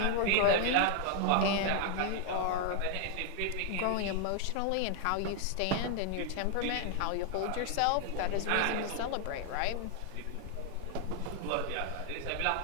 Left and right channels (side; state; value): both; different; correlation 0.00